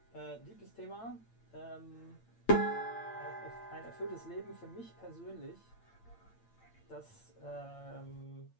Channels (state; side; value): late; right; 8.8 ms